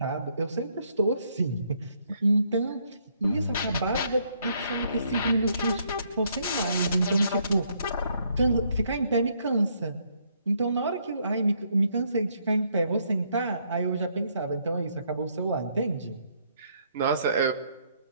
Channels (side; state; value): both; inverted; correlation -0.71